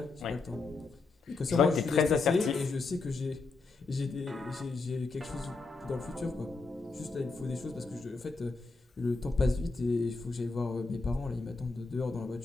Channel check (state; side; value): quieter; right; 3.9 dB